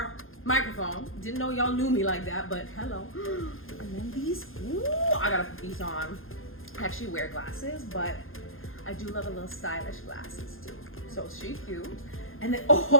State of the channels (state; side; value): late; right; 0.60 ms